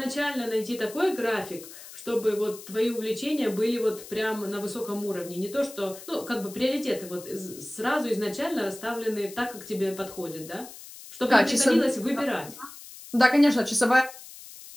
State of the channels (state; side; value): noise; left; hiss, 16 dB below the sound